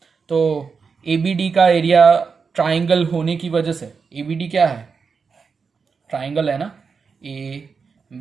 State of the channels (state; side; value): quieter; left; 5.4 dB